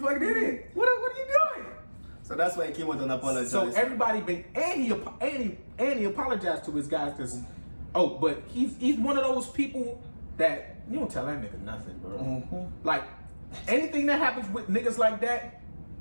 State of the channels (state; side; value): inverted; both; correlation -1.00